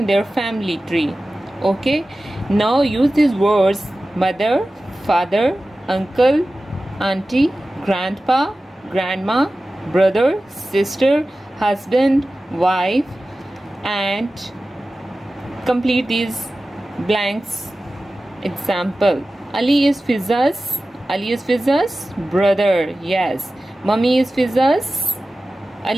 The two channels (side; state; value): both; normal; correlation 0.95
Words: their family tree. Okay, now use these words: mother, father, uncle, auntie, grandpa, grandma, brother, sister, husband, wife, and complete these blanks. Example: Ali is Fiza's brother. Yes. Mummy is Fiza's.